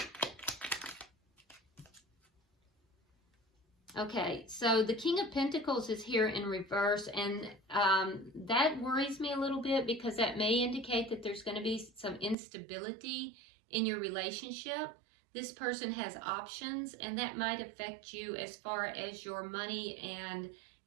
Okay, so the King of Pentacles is here in reverse, and that worries me a little bit, because that may indicate that there's going to be some instability in your relationship. This person has options, and that might affect you as far as your money and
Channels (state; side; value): drops out; left; at 12.4 s